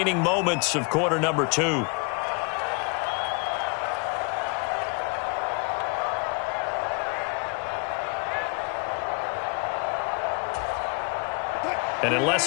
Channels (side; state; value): right; quieter; 32.2 dB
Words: moments of quarter number 2. And unless